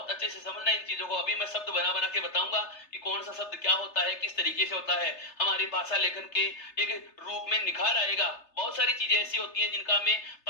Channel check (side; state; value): right; late; 3.3 ms